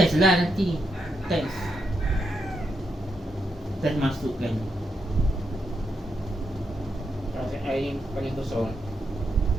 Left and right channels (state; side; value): normal; both; correlation 0.82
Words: lah nanti. Test masukkan. Kasih air paling kosong.